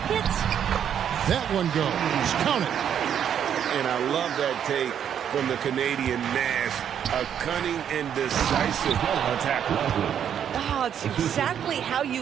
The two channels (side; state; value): left; quieter; 8.9 dB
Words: That one goes. Count it. And I love that take from the Canadian Nash. A cunning and decisive attack. Oh, it's exactly how